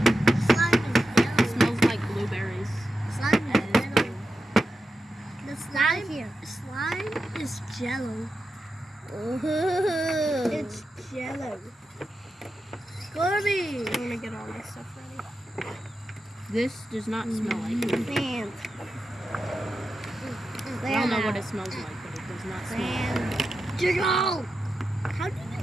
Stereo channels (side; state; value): both; normal; correlation 0.90